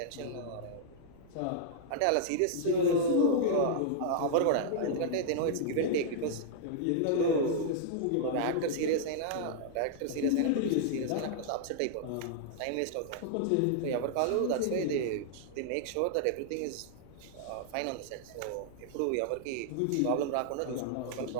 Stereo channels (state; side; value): different; both; correlation -0.01